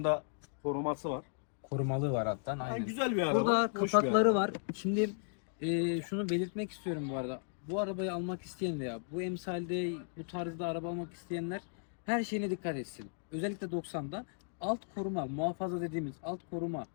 da koruması var. korumalı var alttan. Yani Aynen. güzel bir araba. Burada hoş bir kapakları araba. var. Şimdi şunu belirtmek istiyorum bu arada. Bu arabayı almak isteyen veya bu emsalde bu tarzda araba almak isteyenler her şeyine dikkat etsin. Özellikle 90'da alt koruma, muhafaza dediğimiz alt koruma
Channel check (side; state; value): right; silent; digital silence